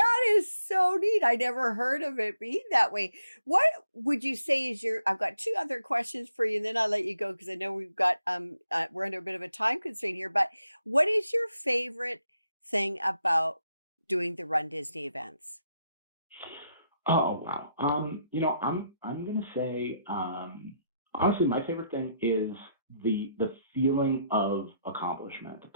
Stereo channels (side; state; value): both; inverted; correlation -0.78